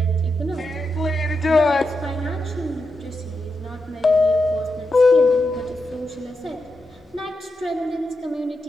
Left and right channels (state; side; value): normal; both; correlation 0.86